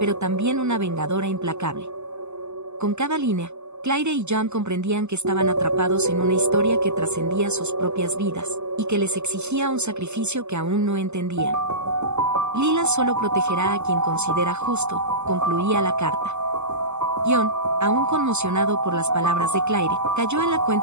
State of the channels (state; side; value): late; left; 0.82 ms